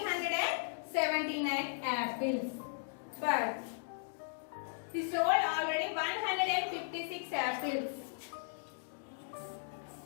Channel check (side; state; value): right; silent; digital silence